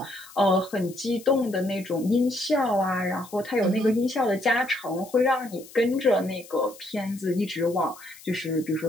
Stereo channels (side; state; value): left; noise; hiss, 20 dB below the sound